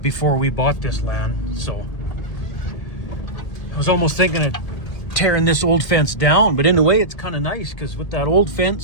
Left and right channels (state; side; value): late; right; 1.8 ms